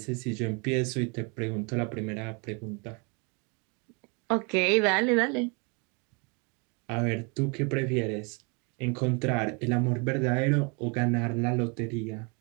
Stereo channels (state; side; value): quieter; left; 33.0 dB